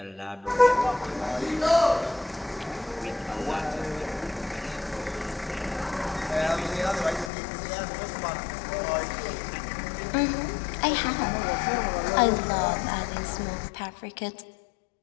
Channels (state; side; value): drops out; right; at 7.3 s